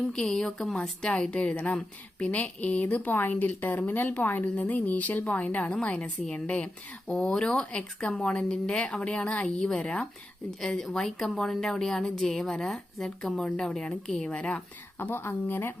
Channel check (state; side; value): normal; both; correlation 0.90